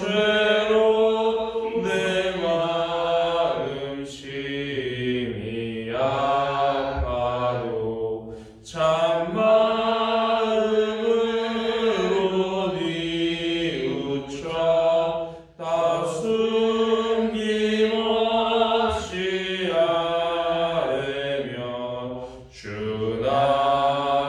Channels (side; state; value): both; identical; correlation 1.00